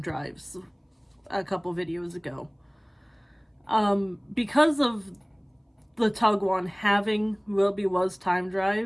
drives a couple videos ago. Because of the Tug One having Will Be Was time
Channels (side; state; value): both; identical; correlation 1.00